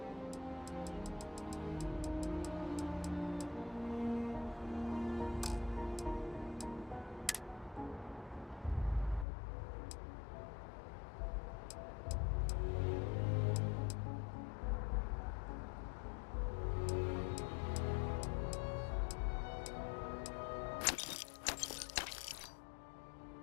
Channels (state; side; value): drops out; right; at 9.2 s